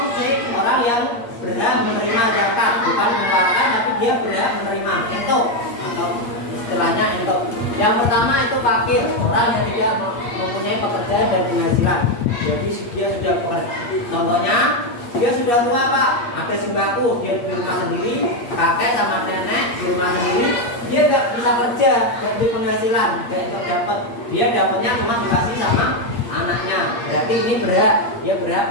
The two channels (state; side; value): late; right; 8.5 ms